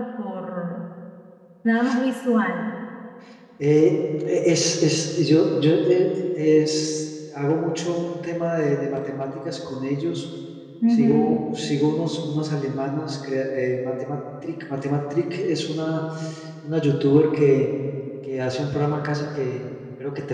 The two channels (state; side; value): identical; both; correlation 1.00